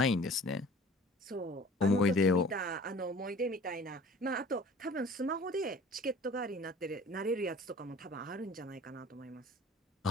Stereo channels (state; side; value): normal; both; correlation 0.47